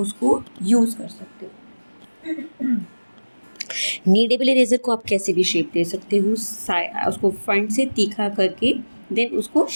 यूज़ कर सकते हो। नीडेबल इरेज़र को आप कैसे भी शेप दे सकते हो, उसको फ्रंट से तीखा करके देन उसको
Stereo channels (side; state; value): both; inverted; correlation -1.00